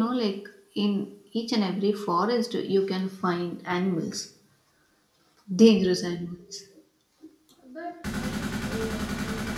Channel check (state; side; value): identical; both; correlation 1.00